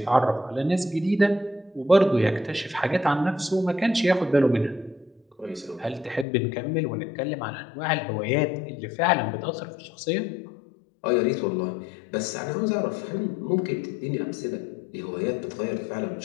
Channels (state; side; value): drops out; right; at 6.2 s